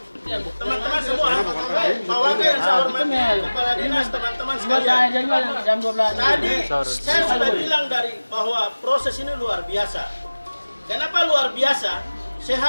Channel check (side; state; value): both; inverted; correlation -1.00